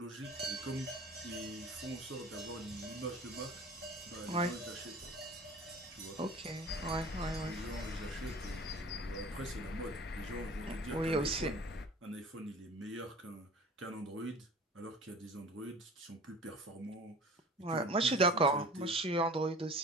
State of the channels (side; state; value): both; normal; correlation 0.43